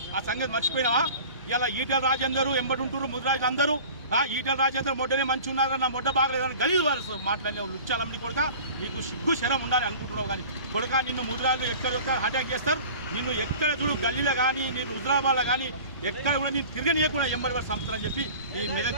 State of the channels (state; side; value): inverted; both; correlation -0.41